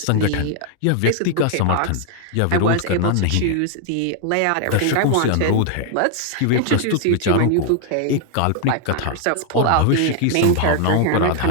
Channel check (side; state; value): both; different; correlation 0.00